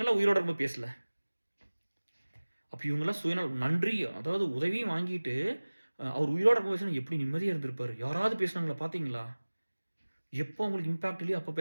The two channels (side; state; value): both; inverted; correlation -1.00